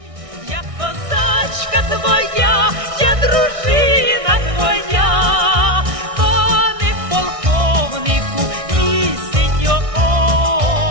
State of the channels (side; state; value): left; late; 1.6 ms